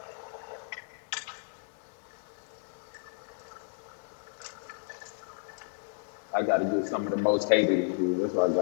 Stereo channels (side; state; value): right; silent; digital silence